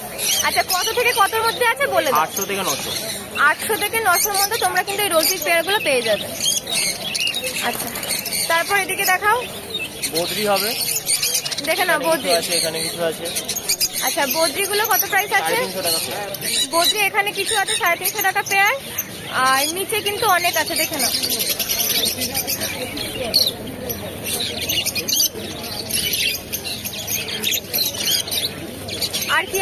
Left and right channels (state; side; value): identical; both; correlation 1.00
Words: আচ্ছা কত থেকে কতর মধ্যে আছে বলে দাও। 800 থেকে 900। 800 থেকে 900 মধ্যে তোমরা কিন্তু এই রোজি পেয়ার গুলো পেয়ে যাবে। আচ্ছা তারপর এদিকে দেখাও। বদ্রি হবে, দেখে নাও বদ্রি আছে, এখানে কিছু আছে। আচ্ছা বদ্রি গুলো কত প্রাইস আছে? 350 টাকা পেয়ার। বদ্রি এখানে কিছু আছে 350 টাকা পেয়ার। আর নিচে কিন্তু অনেক আছে, দেখে নাও। আর কি